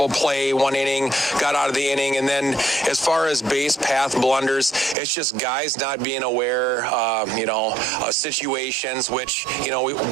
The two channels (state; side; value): drops out; left; at 5.0 s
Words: play, 1 inning, got out of the inning. And then as far as base path blunders, it's just guys not being aware, of situations, which,